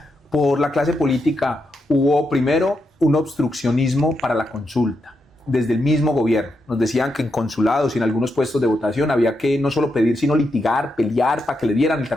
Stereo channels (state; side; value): normal; both; correlation 0.84